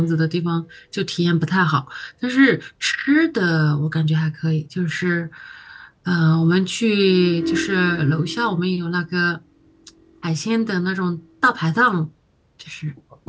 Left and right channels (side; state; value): both; identical; correlation 1.00